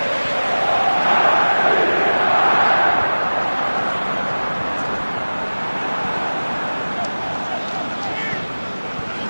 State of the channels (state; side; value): inverted; both; correlation -1.00